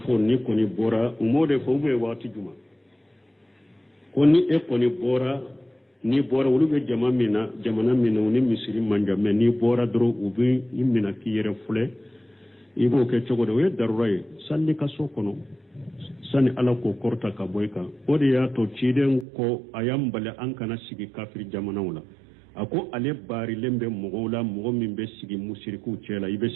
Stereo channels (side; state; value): left; drops out; at 19.2 s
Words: ni ko ni bora umode fo be wati juma ko ni e ko ni bora wulu be jamana mina ni misiri manja me ni bora dro ubi imina ki yere fule ibo ke chogo we darurai salli ka so kono sani ala ko korta ka boyka ode ya to ciden ko ayambale an kana sigi kafir jamana wala ako ale bari lembe mogola mogo min be sigi musiriku cela ibe